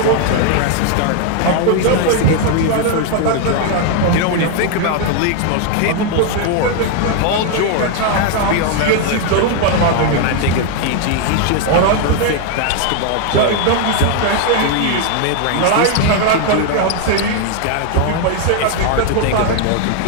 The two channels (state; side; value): different; both; correlation 0.00